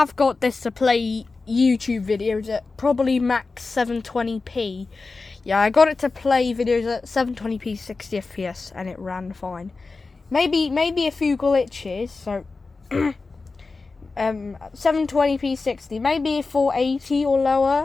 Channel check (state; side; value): quieter; right; 4.0 dB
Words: got this to play YouTube videos at probably max 720p. Yeah, I got it to play videos at 720p 60 FPS and it ran fine. Maybe a few glitches, so 720p 60, maybe 480 or